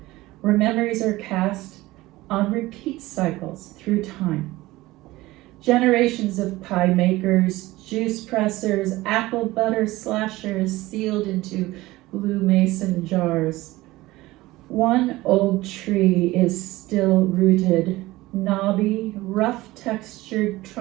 where memories are cast on repeat cycles through time. Generations of pie makers, juice pressers, apple butter slashers sealed into blue mason jars. One old tree is still rooted, knobby, rough-textured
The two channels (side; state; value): left; quieter; 18.7 dB